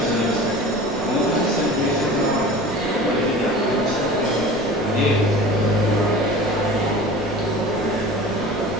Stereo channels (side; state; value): left; noise; rumble, 17 dB below the sound